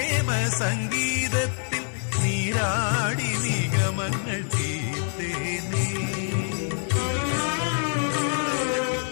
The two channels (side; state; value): right; silent; 61 dB below the other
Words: സംഗീതത്തിൽ നീരാടി നിഗമങ്ങൾ തീർത്തേനേ.